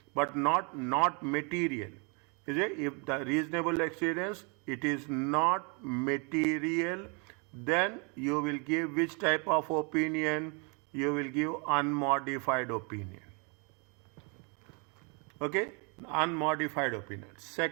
but not material. Is it? If the reasonable assurance, it is not material, then you will give which type of opinion? You will give unmodified opinion. Okay, unmodified opinion.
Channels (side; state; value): left; quieter; 34.1 dB